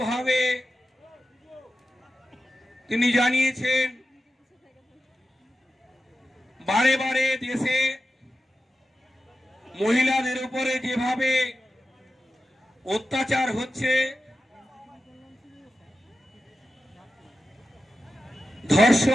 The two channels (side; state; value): both; normal; correlation 0.92